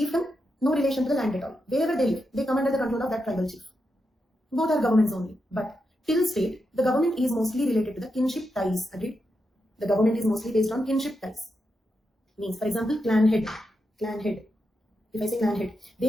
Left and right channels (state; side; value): normal; both; correlation 0.86